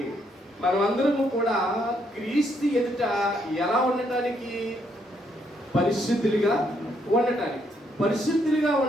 మనమందరము కూడా క్రీస్తు ఎదుట ఎలా ఉండటానికి? పరిశుద్ధులుగా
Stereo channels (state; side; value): normal; both; correlation 0.73